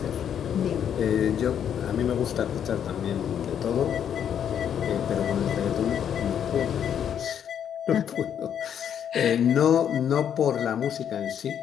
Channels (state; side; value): quieter; right; 8.9 dB